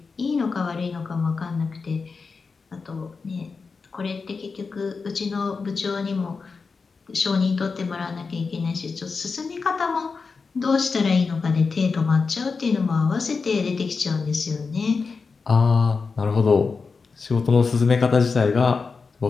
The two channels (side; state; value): right; quieter; 4.7 dB